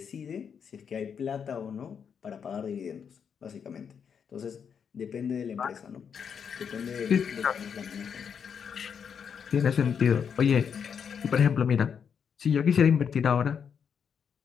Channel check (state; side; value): quieter; right; 7.1 dB